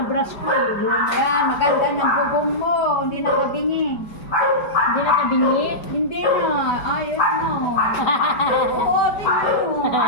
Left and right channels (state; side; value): late; right; 5.0 ms